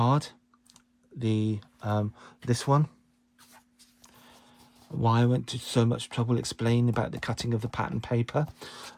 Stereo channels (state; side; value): identical; both; correlation 1.00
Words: the this one, why I went to so much trouble explaining about the cutting of the pattern paper,